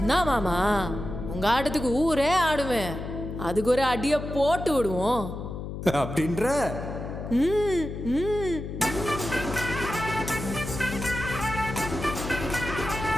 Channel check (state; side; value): noise; left; hum, 7 dB below the sound